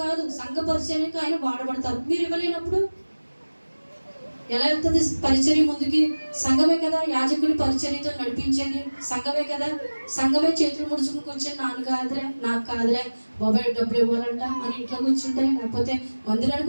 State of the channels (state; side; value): inverted; both; correlation -1.00